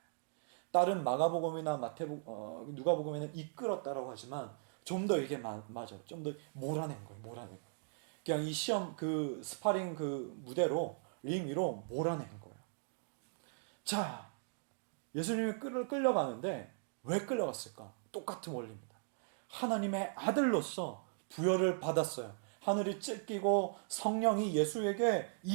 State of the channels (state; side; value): silent; left; digital silence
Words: 다른 마가복음이나 누가복음에는 이끌었다라고 하지만 좀 더 이게 맞아요. 좀 더 몰아낸 거예요. 몰아낸 거예요. 그냥 이 시험 그 스파링 그 무대로 링 위로 몰아낸 거예요. 자, 예수님이 끌려가는데 왜 끌려갔을까? 똑같은 원리입니다. 하나님의 아들로서 부여를 받았어요. 하늘이 찢기고 성령이 예수에게